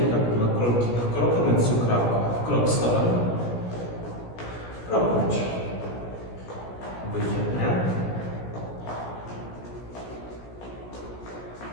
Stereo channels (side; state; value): right; late; 17 ms